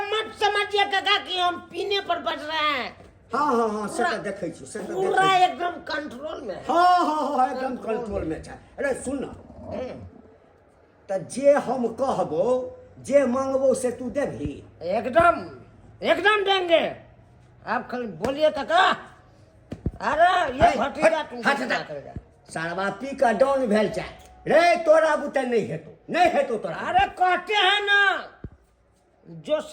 मत समझिए काका कि हम पीने पर बच रहे हैं। हाँ हाँ हाँ से तो देखे छी, से तो पूरा देखे एकदम कंट्रोल में है। हाँ हाँ हाँ एकदम कंट्रोल में छै। अरे सुन ना, तो जे हम कहबो जे मांगबो से तू देभी? एकदम एकदम देंगे, आप खाली बोलिए काका। अरे ये भतीजा तुमको क्या करेगा? सारवा पी का डाउन भेल छै रे, तोरा बुते नहीं हेतो, नहीं हेतो तोरा। अरे कहते हैं ना, जो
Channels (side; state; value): both; identical; correlation 1.00